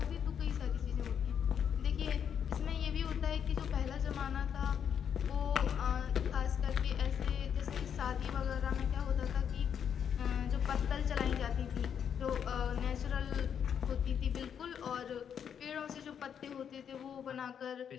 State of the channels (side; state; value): right; quieter; 8.1 dB